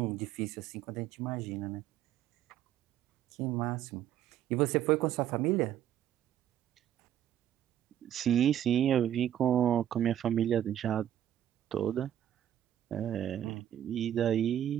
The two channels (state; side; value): quieter; left; 11.0 dB